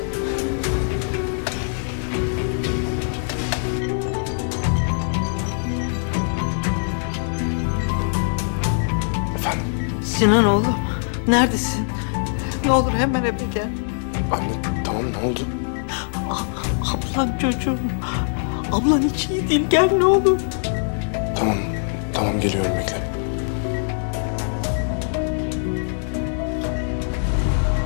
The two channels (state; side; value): silent; right; digital silence